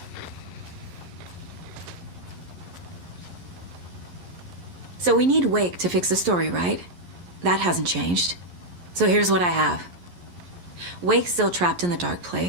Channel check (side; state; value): left; late; 11 ms